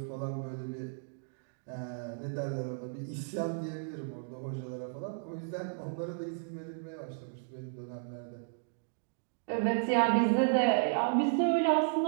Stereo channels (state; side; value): silent; left; digital silence